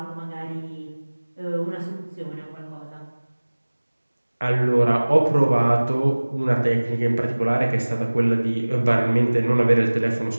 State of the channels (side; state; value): both; inverted; correlation -1.00